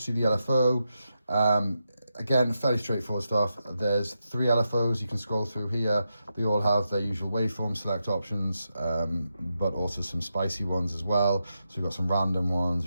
the LFO. Again, fairly straightforward stuff. There's 3 LFOs you can scroll through here. They all have their usual waveform select options, but also some spicy ones as well. So we've got some random ones,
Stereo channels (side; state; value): both; inverted; correlation -0.87